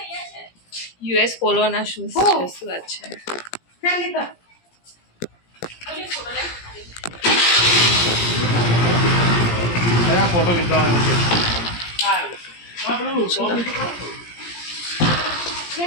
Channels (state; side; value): late; right; 17 ms